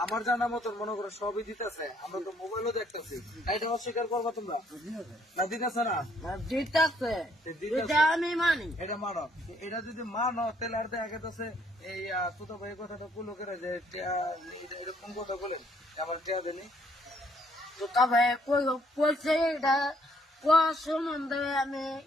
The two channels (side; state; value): both; normal; correlation 0.66